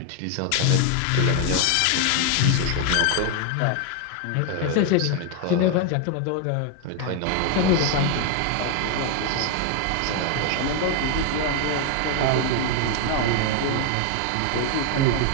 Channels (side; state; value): both; different; correlation 0.01